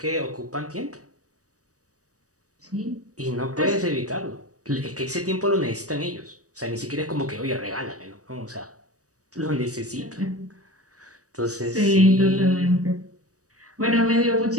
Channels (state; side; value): late; left; 0.66 ms